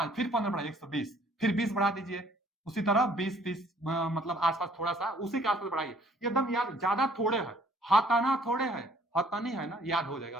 फिर 15 बढ़ाइए 120, फिर 20 बढ़ा दीजिए, उसी तरह 20-30 मतलब आसपास थोड़ा सा उसी के आसपास बढ़ाइए, एकदम याद, ज्यादा थोड़े है, हताना थोड़े है, हतानी है ना, याद हो जाएगा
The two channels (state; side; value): normal; both; correlation 0.59